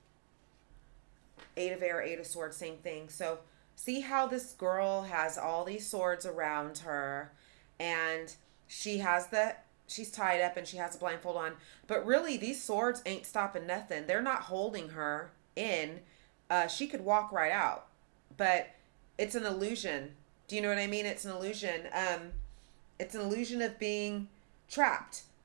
Eight of Air, Eight of Swords, same thing. So see how this girl has all these swords around her, and she's tied up and she has a blindfold on. But really, these swords ain't stopping nothing. They're not holding her in. She could walk right out. But it's an illusion. Do you know what I mean? It's an illusion. It's an illusion of being trapped,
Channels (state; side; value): silent; left; digital silence